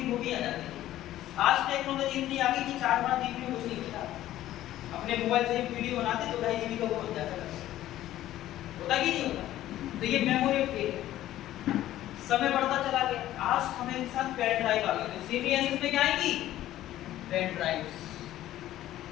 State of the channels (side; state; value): right; quieter; 13.8 dB